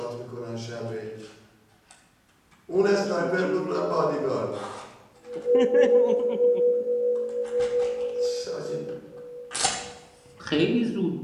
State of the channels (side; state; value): both; identical; correlation 1.00